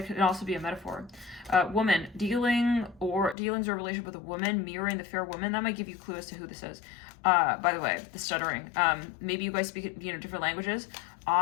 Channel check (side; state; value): right; drops out; at 3.4 s